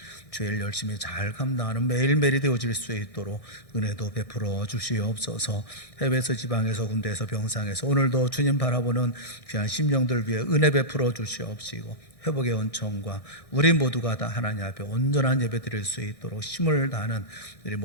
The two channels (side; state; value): right; late; 1.6 ms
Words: 주일 열심히 잘 감당하는 매일매일이 되어질 수 있도록 은혜도 베풀어 주시옵소서. 해외에서 지방에서 군대에서 병상에서 오늘도 주님 바라보는 귀한 심령들 위해 은혜 베풀어 주시옵시고 회복의 은총과 우리 모두가 다 하나님 앞에 온전한 예배 드릴 수 있도록 힘을 다하는 우리